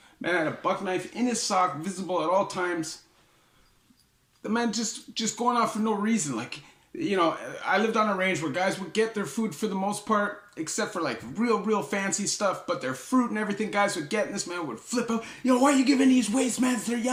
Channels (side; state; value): both; identical; correlation 1.00